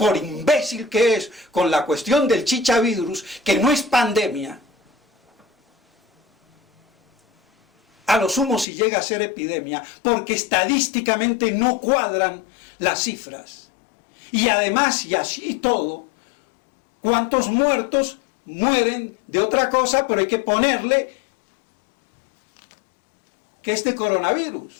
imbécil que es, con la cuestión del chichavirus, que no es pandemia, a lo sumo si llega a ser epidemia, porque estadísticamente no cuadran las cifras. Y además, y así todo, ¿cuántos muertos mueren de otra cosa? Pero hay que ponerle que es de coronavirus.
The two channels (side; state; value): right; drops out; at 8.7 s